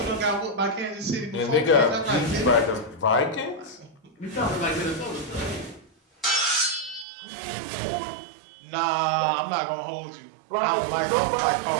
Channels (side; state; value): left; drops out; at 7.1 s